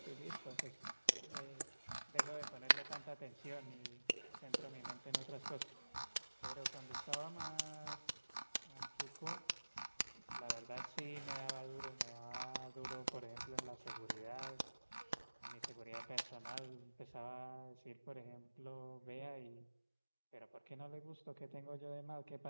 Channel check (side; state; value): both; inverted; correlation -1.00